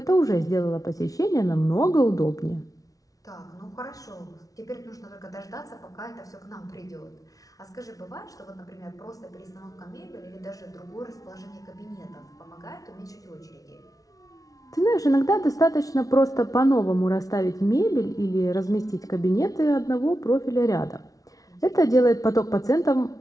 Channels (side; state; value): right; late; 0.18 ms